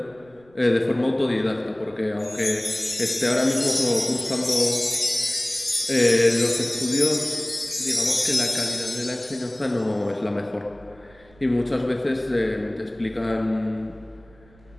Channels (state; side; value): noise; right; rumble, 28 dB below the sound